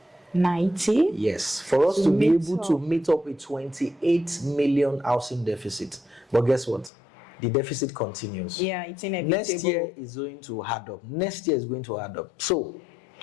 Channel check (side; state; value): right; drops out; at 6.9 s